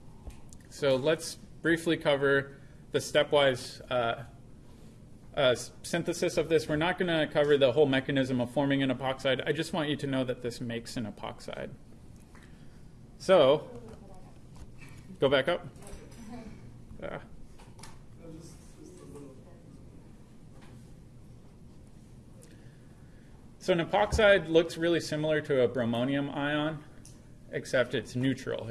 So let's briefly cover the stepwise synthesis of this. We're not going to cover the whole mechanism of forming an epoxide. I just want you to know that this makes an epoxide. So, go back up. So an epoxide looks really similar to a bromonium ion, except it's neutral.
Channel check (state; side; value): identical; both; correlation 1.00